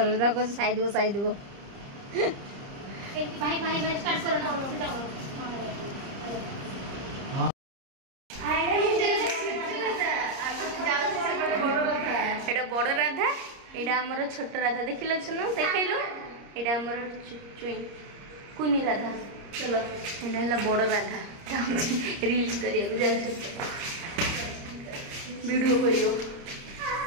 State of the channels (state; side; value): late; left; 30 ms